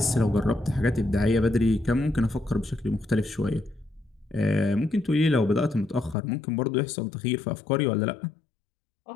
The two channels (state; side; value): drops out; right; at 6.2 s